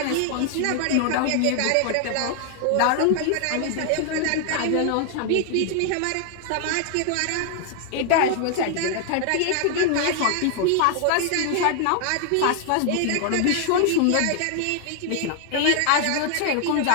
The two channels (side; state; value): both; different; correlation 0.00